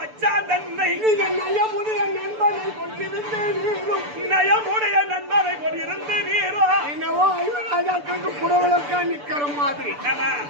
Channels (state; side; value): late; left; 6.9 ms